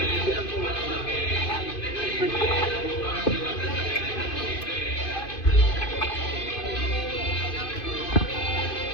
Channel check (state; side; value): late; right; 2.5 ms